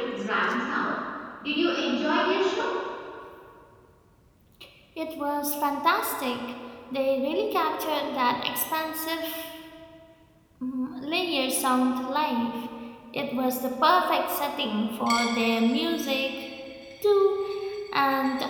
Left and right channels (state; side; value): identical; both; correlation 1.00